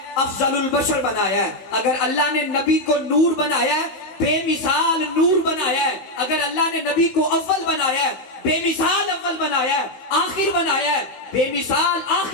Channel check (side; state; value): right; late; 15 ms